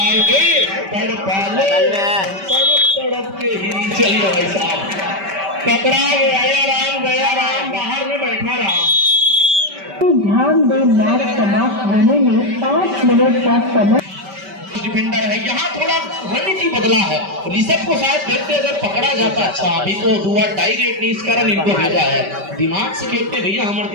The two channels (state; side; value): late; left; 5.2 ms